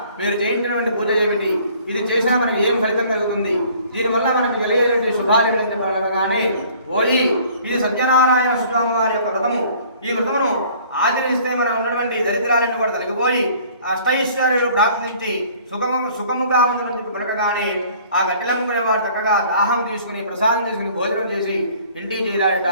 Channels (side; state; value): both; inverted; correlation -0.54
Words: మీరు చేయించినటువంటి పూజ ఏమిటి? ఇది చేసినా మనకి ఏం ఫలితం కలుగుతుంది? దీనివల్ల మనకి కలిగేటువంటి శుభాలు కానీ ఓయి, ఇది సత్యనారాయణ స్వామి వారి యొక్క వ్రతము. ఈ వ్రతమును ఆచరిస్తే మనం ఉన్నటువంటి దరిద్రాలన్నీ కూడా తొలగిపోయి అష్టైశ్వర్యాలు ప్రాప్తించి సుఖముగా ఉందని చెప్పి పలకగానే ఆ గట్టెలమ్ముకునే వాడు చక్కగా దాహం తీసుకుని ప్రసాదం తీసుకుని భోజనం చేసి ఇంటికి చేరాడట.